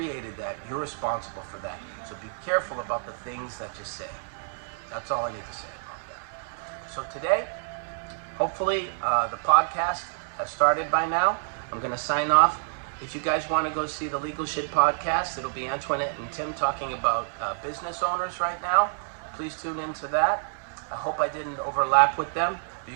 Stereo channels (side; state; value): left; silent; digital silence